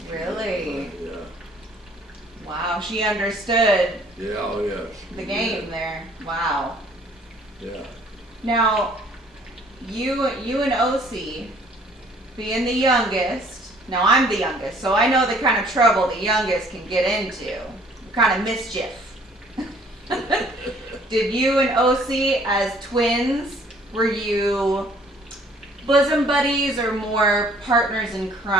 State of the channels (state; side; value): normal; both; correlation 0.58